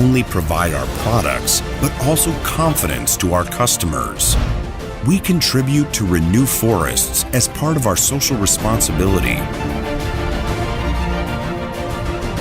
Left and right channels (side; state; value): both; identical; correlation 1.00